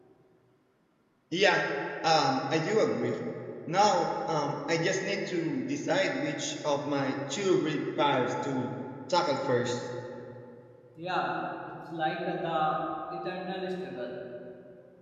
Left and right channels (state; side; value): identical; both; correlation 1.00